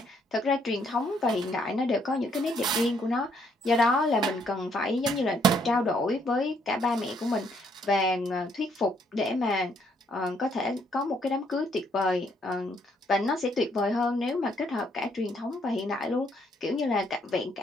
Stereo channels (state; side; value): normal; both; correlation 0.70